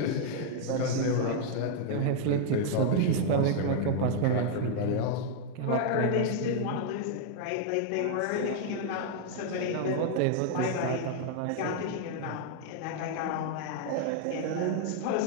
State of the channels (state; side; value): different; both; correlation 0.00